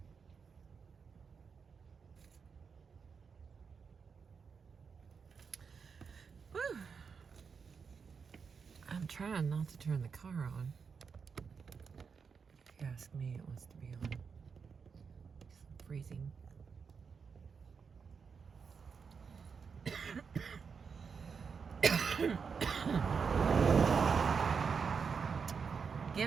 trying not to turn the car on. If you ask me, it wants to be on. It's freezing.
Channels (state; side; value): quieter; left; 5.8 dB